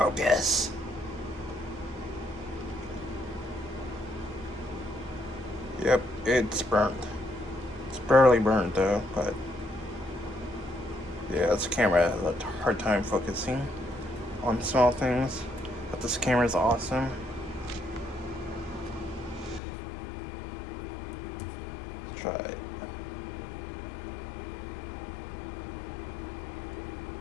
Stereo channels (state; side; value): drops out; right; at 19.6 s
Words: Yep, it's burnt. It's barely burnt though, but yeah, this camera has a hard time focusing on small things. But this camera is awesome. Let's try it.